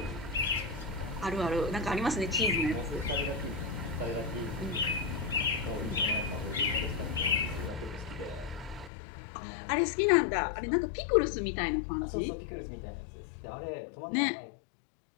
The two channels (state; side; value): drops out; right; at 8.9 s